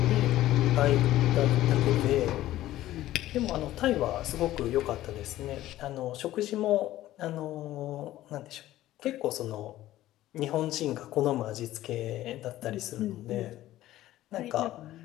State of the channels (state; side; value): quieter; right; 14.7 dB